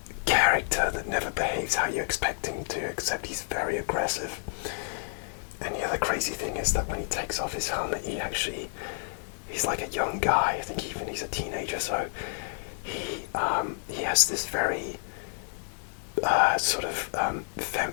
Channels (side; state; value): right; silent; digital silence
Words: character that never behaves how you expect him to, except he's very aggressive. And the other crazy thing is that when he takes off his helmet, he's like a young guy. I think even he's a teenager, so he has this very sort of